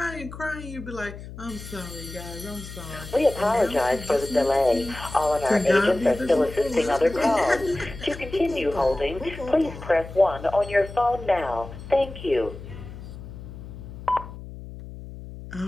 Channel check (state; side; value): noise; left; hum, 13 dB below the sound